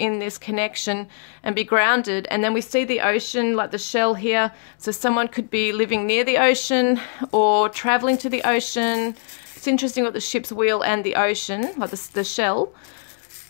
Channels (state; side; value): silent; right; digital silence